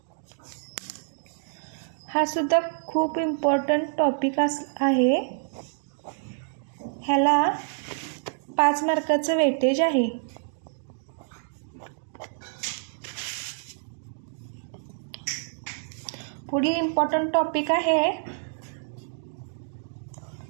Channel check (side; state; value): left; silent; digital silence